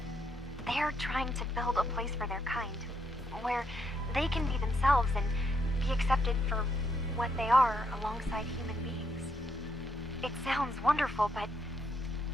They're trying to build a place for their kind, where they can be themselves and be accepted for what they are alongside human beings. It sounds wonderful, but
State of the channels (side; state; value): both; normal; correlation 0.76